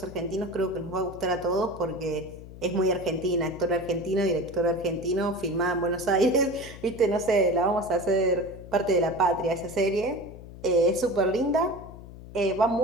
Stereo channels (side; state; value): left; noise; hum, 15 dB below the sound